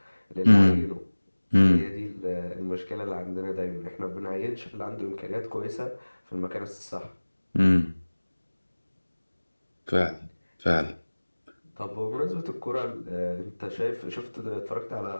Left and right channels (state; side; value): inverted; both; correlation -1.00